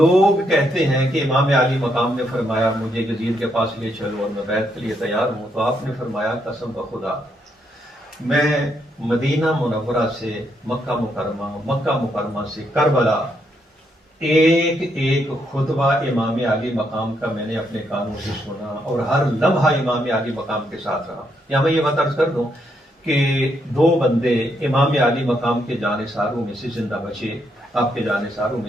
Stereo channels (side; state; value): both; normal; correlation 0.76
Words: کہتے ہیں کہ امام عالی مقام نے فرمایا مجھے یزید کے پاس لے چلو اور میں بیعت کے لیے تیار ہوں، تو آپ نے فرمایا قسم بخدا میں مدینہ منورہ سے مکہ مکرمہ سے کربلا ایک ایک خطبہ امام عالی مقام کا میں نے اپنے کانوں سے سنا، اور ہر لمحہ امام عالی مقام کے ساتھ رہا. یا میں یہ بات عرض کر دوں کہ دو بندے امام عالی مقام کے جانثاروں میں سے زندہ بچے. آپ کے جانثاروں